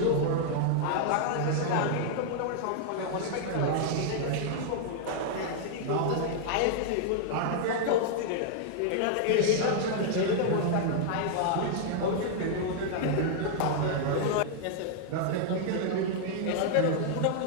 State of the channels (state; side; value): different; both; correlation -0.01